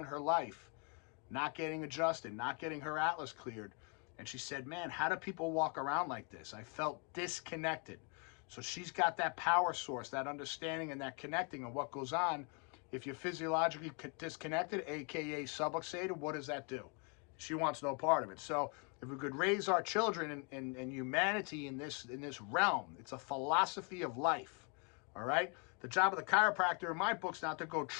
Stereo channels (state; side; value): quieter; right; 36.1 dB